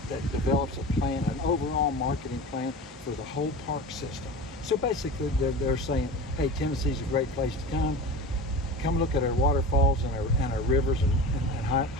develops a plan, an overall marketing plan for the whole park system. So basically, they're saying, hey, Tennessee's a great place to come look at our waterfalls and our rivers and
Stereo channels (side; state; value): both; normal; correlation 0.32